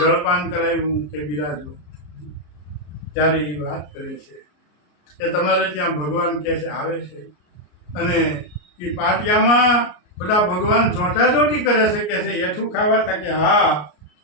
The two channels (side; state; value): right; late; 33 ms